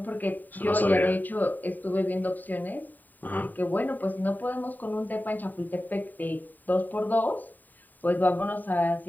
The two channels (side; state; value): right; late; 0.087 ms